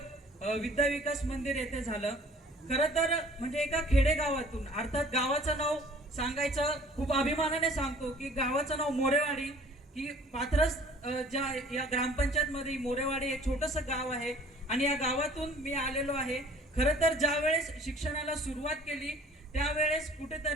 विद्या विकास मंदिर येथे झालं। खरं तर म्हणजे एका खेडेगावातून, अर्थात गावाचं नाव सांगायचं खूप अभिमानाने सांगतो की गावाचं नाव मोरेवाडी, की पाथरस ज्या या ग्रामपंचायत मध्ये मोरेवाडी एक छोटंसं गाव आहे आणि या गावातून मी आलेलो आहे। खरं तर ज्या वेळेस शिक्षणाला सुरुवात केली त्यावेळेस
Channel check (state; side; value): normal; both; correlation 0.52